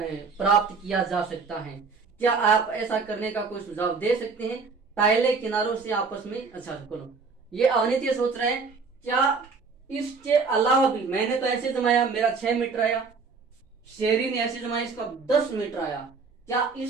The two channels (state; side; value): quieter; left; 4.8 dB